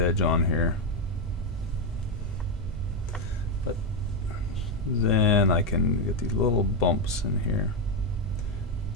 on here. But then I can get these little bumps in here.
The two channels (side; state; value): both; normal; correlation 0.06